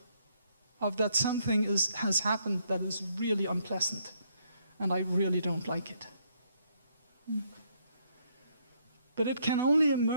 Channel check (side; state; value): both; inverted; correlation -0.72